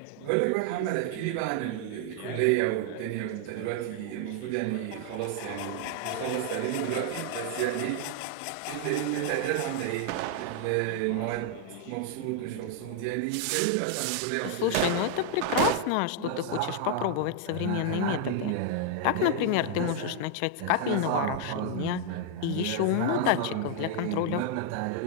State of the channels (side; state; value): both; different; correlation 0.00